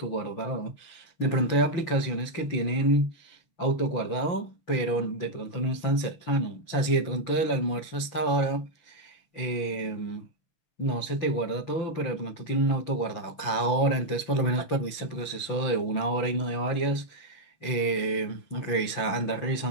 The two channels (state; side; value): late; right; 5.9 ms